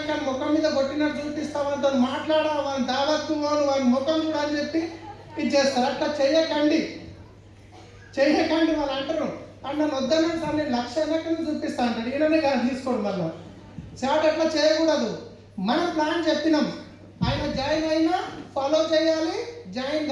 కానీ ముఖం మీద కొట్టినట్టు చూపిస్తా, వాళ్ళతో మాట్లాడా, వాళ్ళ దావత్తు వాళ్ళ ముఖం కూడా అని చెప్పి ఇది చేస్తారు. అట్లా చేయకండి. వాళ్ళు అంటారు నన్ను వద్దన్నాను సార్, నేను 1,00,000 అయినా కానీ చూపిస్తా అంటాడు. ఈయననే కాదు తీసుకోండి. మళ్ళీ చాట్ అట్లా చేయకూడదు. మనం ప్లాన్ చెప్పినాం, ఆయన జాయిన్ అయినా ఫాలో చేయాలి, జాయిన్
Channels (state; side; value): identical; both; correlation 1.00